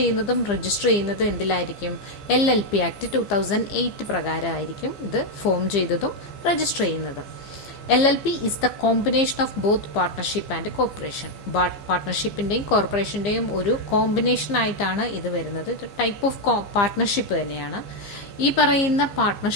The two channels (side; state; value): right; late; 15 ms